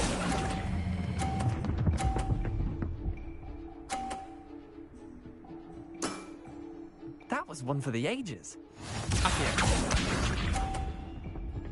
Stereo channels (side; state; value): both; identical; correlation 1.00